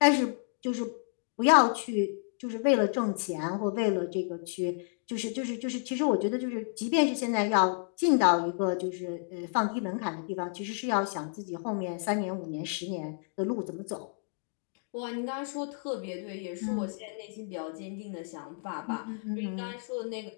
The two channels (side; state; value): right; silent; 57 dB below the other